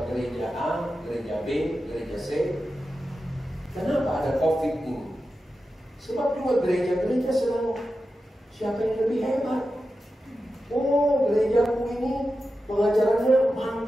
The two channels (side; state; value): both; normal; correlation 0.91